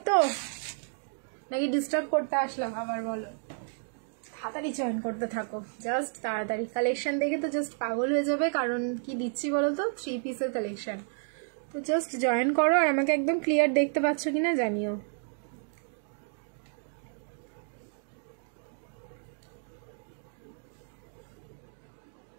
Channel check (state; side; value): silent; left; 57 dB below the other